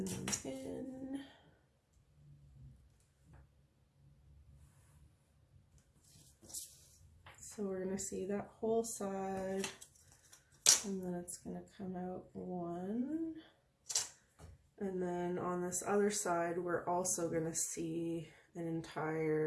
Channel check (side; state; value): both; identical; correlation 1.00